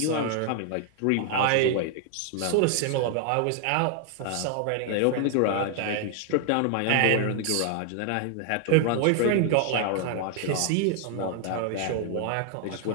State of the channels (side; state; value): both; different; correlation 0.00